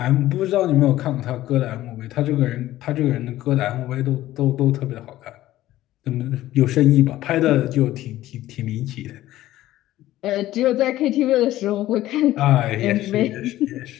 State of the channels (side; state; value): right; quieter; 14.9 dB